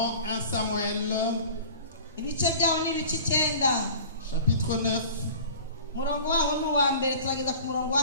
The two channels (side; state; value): both; inverted; correlation -0.41